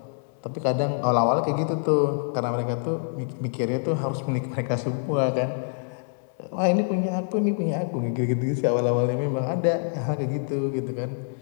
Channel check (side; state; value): right; silent; digital silence